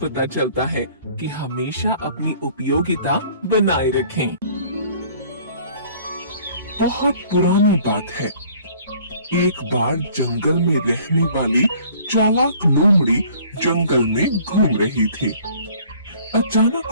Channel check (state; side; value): inverted; both; correlation -0.54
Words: चलता है कि हमेशा अपनी उपयोगिता बनाए रखें। बहुत पुरानी बात है। एक बार जंगल में रहने वाली चालाक लोमड़ी जंगल में घूम रही थी। अचानक